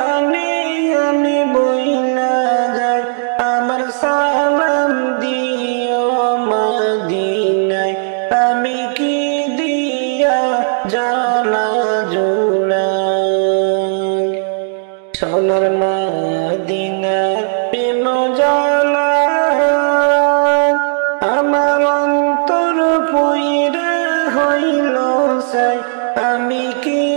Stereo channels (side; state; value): left; silent; digital silence